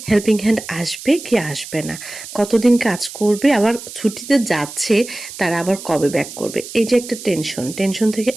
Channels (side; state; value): right; noise; hiss, 13 dB below the sound